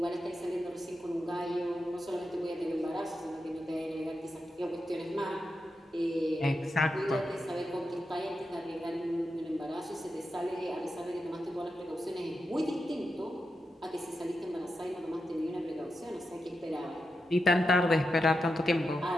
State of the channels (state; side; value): normal; both; correlation 0.87